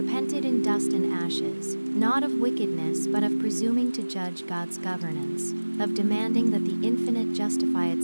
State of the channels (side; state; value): both; inverted; correlation -1.00